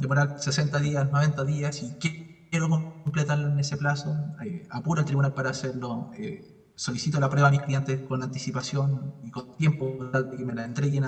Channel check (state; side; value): identical; both; correlation 1.00